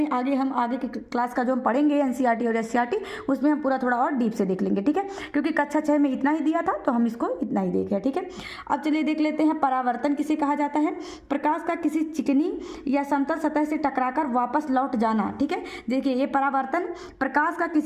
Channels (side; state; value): both; identical; correlation 1.00